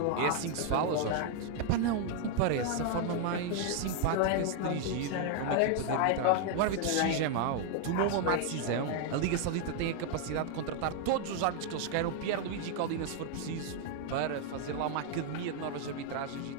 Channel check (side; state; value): both; different; correlation 0.00